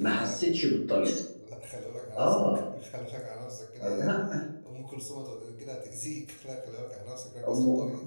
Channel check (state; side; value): inverted; both; correlation -1.00